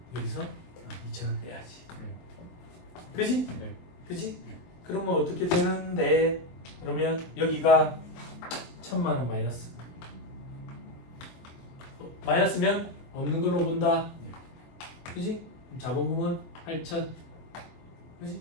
여기서 2천을 빼야지. 그지? 그지? 그러면 어떻게 되는데? 그러면 여기가 1,000만 원 마이너스. 마이너스면 없는 걸로 본다. 그지? 자본금은 8천. 그지?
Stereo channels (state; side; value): late; right; 23 ms